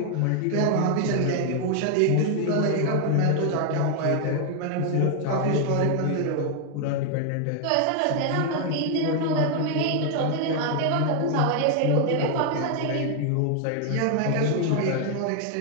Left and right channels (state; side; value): different; both; correlation 0.00